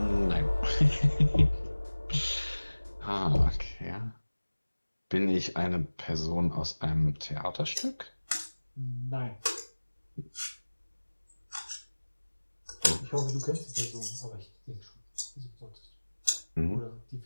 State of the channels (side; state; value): both; inverted; correlation -1.00